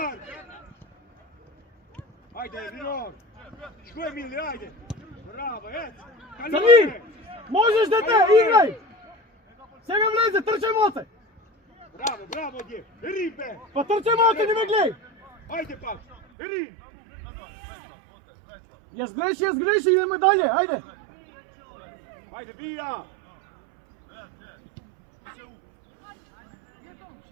Ajde, Rinor. Što je Mili, ajde. Bravo, ec. Crni, možeš dete, igraj. Сега влезе, трчай моце. Bravo, bravo, dje. Ribe. Pa trčaj moce, не ме гледай. Ajde, pa. Ri. Јас греши, идеме далje, ајде. Ajde, bija.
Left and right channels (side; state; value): left; drops out; at 16.2 s